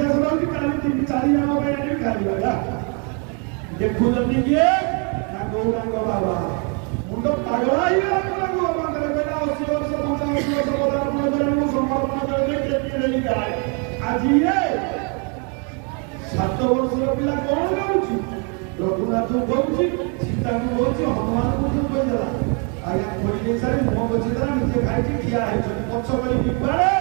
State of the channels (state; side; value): quieter; left; 36.9 dB